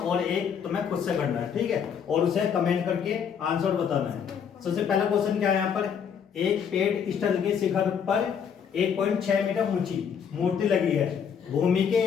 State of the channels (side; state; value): right; quieter; 7.5 dB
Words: एक तुम्हें खुद से करना है। ठीक है, और उसे कमेंट करके आंसर बताना है। सबसे पहला क्वेश्चन क्या है, यहाँ पर एक पेड़ स्थल के शिखर पर 1.6 मीटर ऊंची मूर्ति लगी है। भूमि के